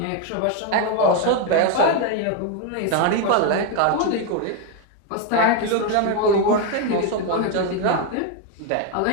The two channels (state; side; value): different; both; correlation 0.01